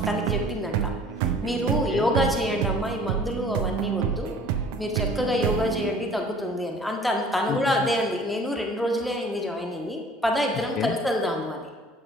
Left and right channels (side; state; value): both; normal; correlation 0.50